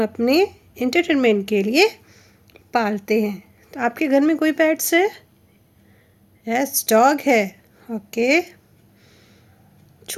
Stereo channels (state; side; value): identical; both; correlation 1.00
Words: अपने एंटरटेनमेंट के लिए पालते हैं। तो आपके घर में कोई पेट्स है? यस, डॉग है। ओके,